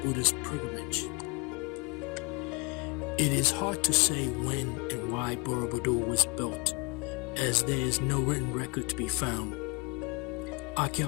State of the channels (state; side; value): quieter; right; 29.8 dB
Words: Buddhist pilgrimage. It is hard to say when and why Borobudur was built, as there is no written record to be found.